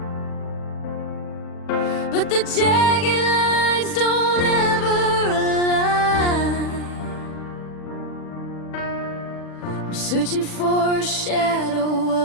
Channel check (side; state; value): right; late; 40 ms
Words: but the jagged lines don't ever align. I'm searching for a shadow